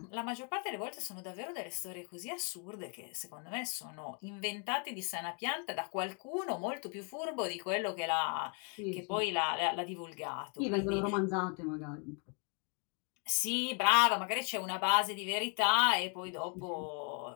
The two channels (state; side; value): quieter; right; 37.7 dB